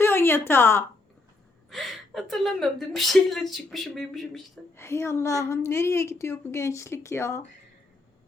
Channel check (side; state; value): right; quieter; 3.2 dB